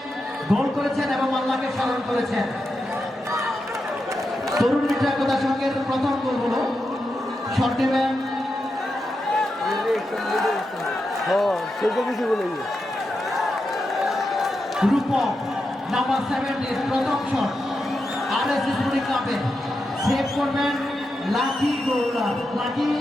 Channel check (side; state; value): both; normal; correlation 0.87